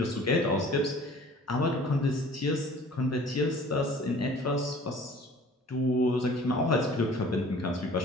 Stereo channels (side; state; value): both; normal; correlation 0.49